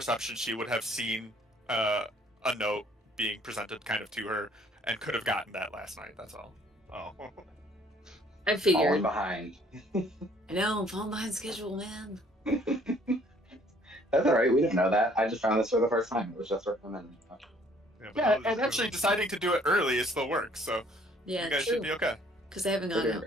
she would have seen a note being presented kind of to her and could have gotten that last night. That's all. Oh. I figured. Falling behind. I know, I'm falling behind schedule, man. That's alright, we didn't know that. I just found this for the first time. It was just recommended. Yeah, and actually deciding to do it early is still work, so Yeah, you guys true. should be okay. Because they haven't gone They're doing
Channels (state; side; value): normal; both; correlation 0.60